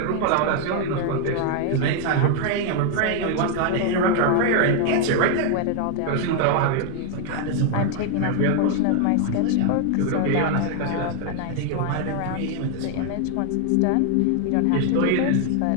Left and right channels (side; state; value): both; different; correlation 0.00